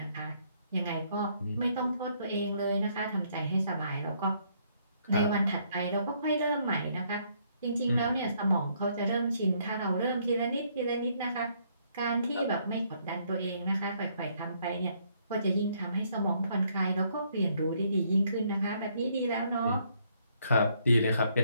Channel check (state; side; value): inverted; both; correlation -0.69